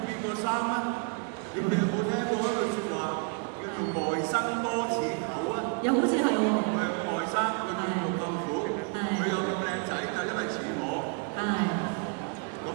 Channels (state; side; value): quieter; left; 36.2 dB